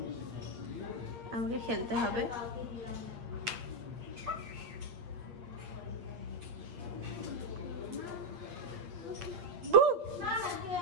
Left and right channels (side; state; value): left; late; 8.7 ms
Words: আমাকে খেলতে হবে।